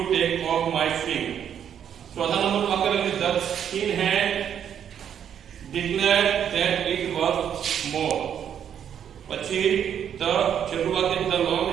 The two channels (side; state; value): left; quieter; 8.9 dB